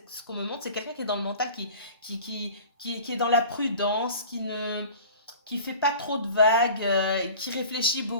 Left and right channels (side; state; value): both; inverted; correlation -0.41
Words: ce qu'on me montre, c'est quelqu'un qui est dans le mental, qui est dans la prudence, qui fait pas trop de vagues, qui réfléchit